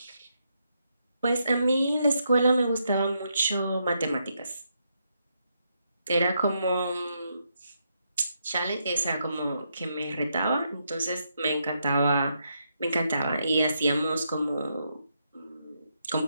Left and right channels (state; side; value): inverted; both; correlation -0.80